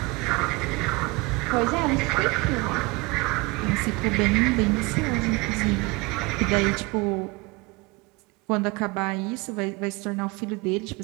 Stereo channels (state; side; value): quieter; left; 25.7 dB